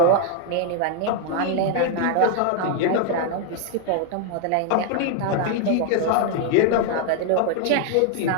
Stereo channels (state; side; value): different; both; correlation 0.00